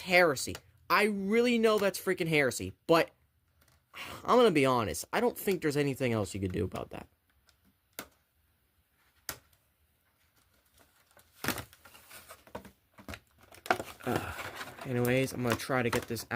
I really know that's freaking heresy. But, I'm gonna be honest. I don't think there's anything else you could do about that. Anyways, I'm gonna try to get this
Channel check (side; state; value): both; identical; correlation 1.00